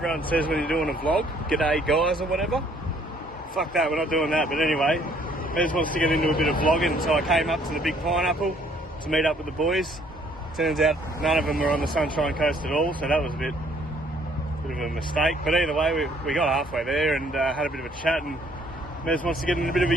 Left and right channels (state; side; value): normal; both; correlation 0.62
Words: says when you're doing a vlog? G'day guys or whatever? Fuck that, we're not doing that. But anyway, Mez wants to get into a bit of vlogging, so I came up to the Big Pineapple to meet up with the boys. Turns out none of them were on the Sunshine Coast at all, so that was a bit of a mistake. But either way, we got halfway there and had a bit of a chat, and Mez wants to get into a bit of a